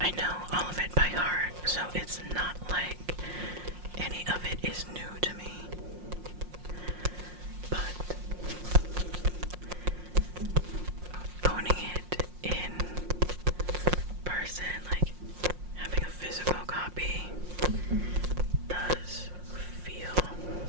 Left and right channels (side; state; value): left; late; 5.6 ms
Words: I know all of it by heart, so it's not like any of it is new to me. But owning it in person, having a physical copy, does feel